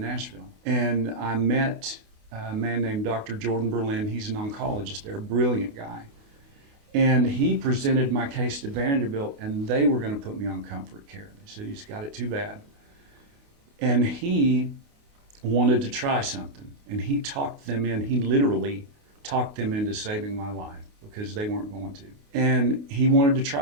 And I met a man named Dr. Jordan Berlin. He's an oncologist there, a brilliant guy. And he presented my case to Vanderbilt, and they were going to put me on comfort care. They said, he's got it too bad. And he wanted to try something, and he talked them in. He literally talked them into saving my life because they weren't going to. And he wanted to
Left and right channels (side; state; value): left; late; 28 ms